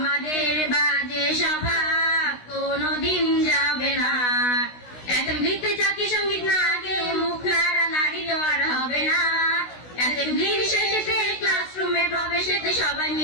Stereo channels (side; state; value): right; late; 16 ms